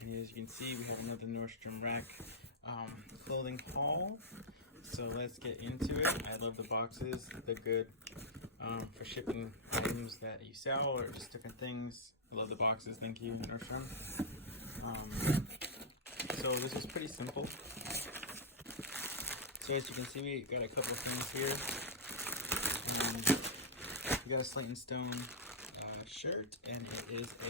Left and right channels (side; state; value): both; normal; correlation -0.05